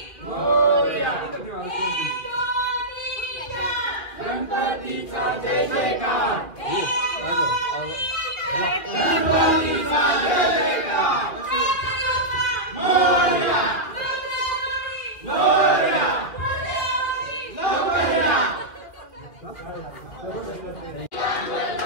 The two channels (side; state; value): right; late; 2.3 ms